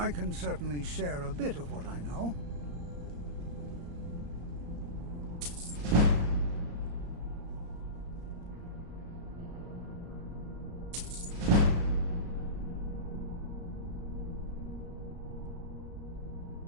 can certainly share a bit of what I know.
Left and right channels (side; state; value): left; late; 34 ms